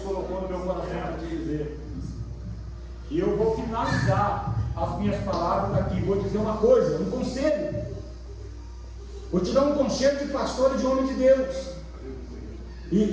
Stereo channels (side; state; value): both; identical; correlation 1.00